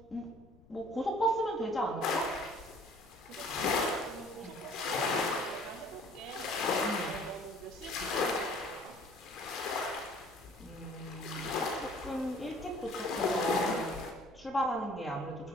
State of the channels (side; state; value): left; noise; rumble, 24 dB below the sound